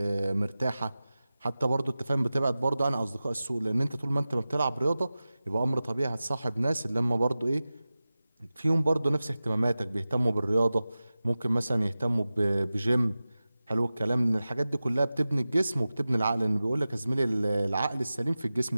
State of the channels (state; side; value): inverted; both; correlation -0.96